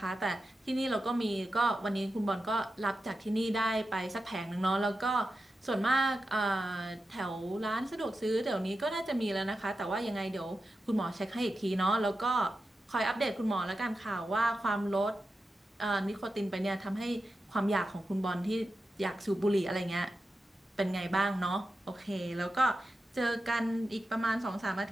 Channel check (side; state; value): both; normal; correlation 0.91